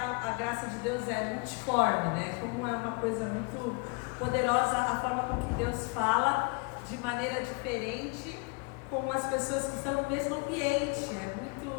graça de Deus é multiforme, né? Como é uma coisa muito poderosa a forma com que Deus fala de maneira diferente com as pessoas que estão no mesmo ambiente. É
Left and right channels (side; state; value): right; quieter; 31.1 dB